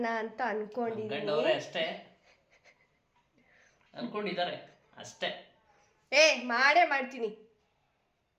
ಅಂತ ಅನ್ಕೊಂಡಿದ್ದೀನಿ. ಅಷ್ಟೇ ಅನ್ಕೊಂಡಿದ್ದಾರೆ ಅಷ್ಟೇ. ಮಾಡೇ ಮಾಡ್ತೀನಿ.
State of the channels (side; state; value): both; identical; correlation 1.00